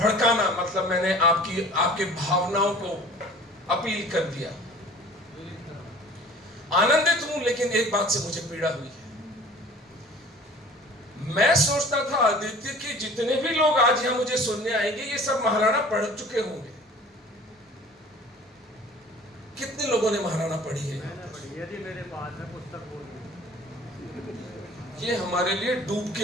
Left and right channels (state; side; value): normal; both; correlation 0.46